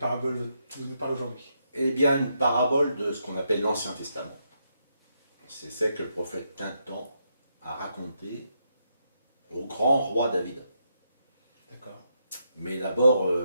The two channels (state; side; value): inverted; both; correlation -0.80